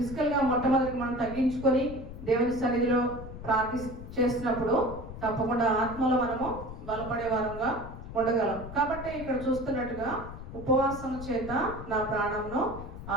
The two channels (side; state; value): left; noise; rumble, 11 dB below the sound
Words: మొట్టమొదటి మనం తగ్గించుకొని దేవుని సన్నిధిలో చేసినప్పుడు తప్పకుండా ఆత్మలో మనము బలపడే వారంగా ఉండగలం. కాబట్టి ఇక్కడ చూస్తున్నట్టుగా ఉపవాసము చేత నా ప్రాణంను